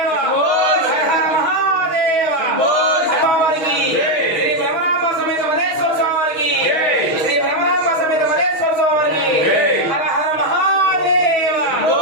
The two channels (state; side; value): late; right; 6.2 ms